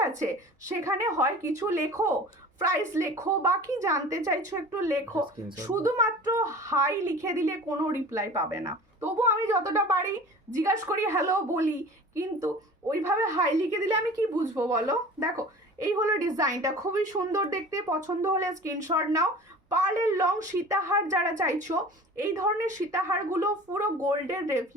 আছে? সেখানে হয় কিছু লেখো, প্রাইস লেখো বা কি জানতে চাইছো একটু লেখো, শুধুমাত্র হাই লিখে দিলে কোনো রিপ্লাই পাবে না। তবু আমি যতটা পারি জিজ্ঞাসা করি, হ্যালো বলি, কিন্তু ওইভাবে হাই লিখে দিলে আমি কি বুঝবো বলো। দেখো এই হলো ডিজাইনটা, খুবই সুন্দর দেখতে। পছন্দ হলে স্ক্রিনশট নাও। পার্লের লং সীতাহার যারা চাইছো, এই ধরনের সীতাহারগুলো পুরো গোল্ডের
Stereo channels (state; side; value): normal; both; correlation 0.41